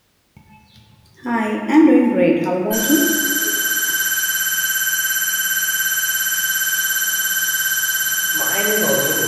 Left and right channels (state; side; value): identical; both; correlation 1.00